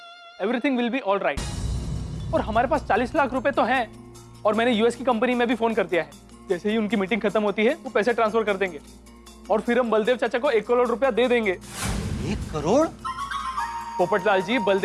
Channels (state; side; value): identical; both; correlation 1.00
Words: everything will be all right. और हमारे पास 40 लाख रुपए तो हैं, और मैंने यूएस की कंपनी में भी फोन कर दिया है। जैसे ही उनकी मीटिंग खत्म होती है वो पैसे ट्रांसफर कर देंगे, और फिर हम बलदेव चाचा को 1 करोड़ रुपया दे देंगे। 1 करोड़? पोपटलाल जी,